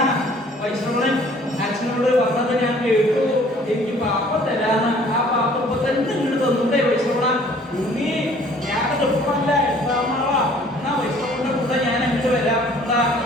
വൈഷ്ണവൻ അച്ഛനോട് പറഞ്ഞത് ഞാൻ കേട്ടു. എനിക്ക് പാപ്പം തരാന്ന്. ആ പാപ്പം ഇപ്പൊ തന്നെ ഇങ്ങോട്ട് തന്നൂടെ വൈഷ്ണവ? ഉണ്ണി ഞാനത് ഇപ്പല്ല 8-ാം നാളാ. എന്നാ വൈഷ്ണവന്റെ കൂടെ ഞാൻ അങ്ങോട്ട് വരാം.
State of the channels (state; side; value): normal; both; correlation 0.55